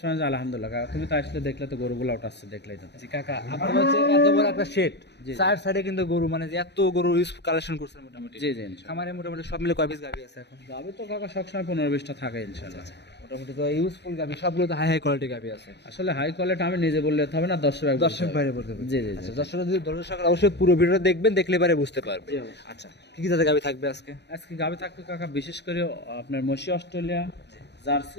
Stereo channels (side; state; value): right; late; 0.50 ms